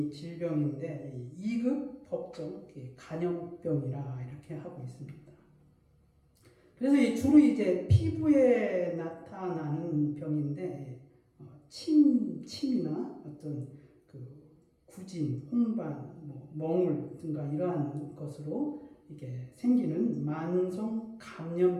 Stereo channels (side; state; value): both; identical; correlation 1.00